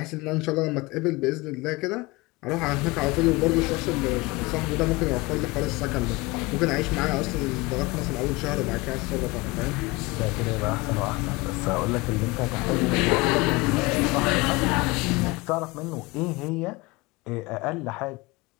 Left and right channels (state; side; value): quieter; right; 23.3 dB